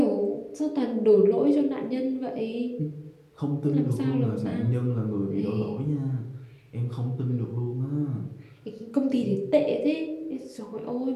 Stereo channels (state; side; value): identical; both; correlation 1.00